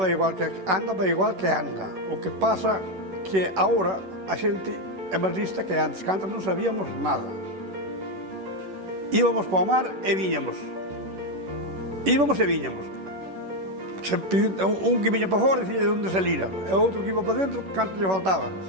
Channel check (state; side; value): late; left; 11 ms